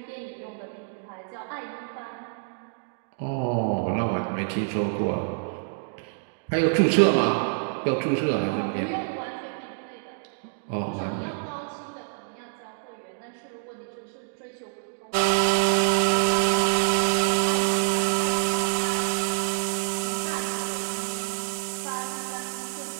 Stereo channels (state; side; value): silent; left; digital silence